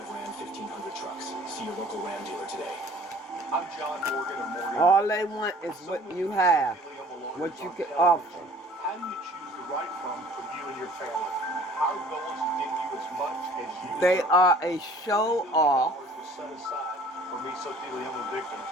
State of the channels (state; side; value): normal; both; correlation 0.51